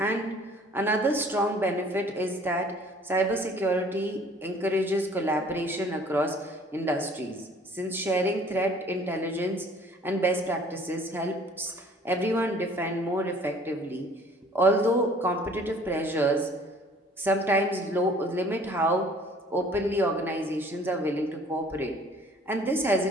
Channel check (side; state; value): both; normal; correlation 0.54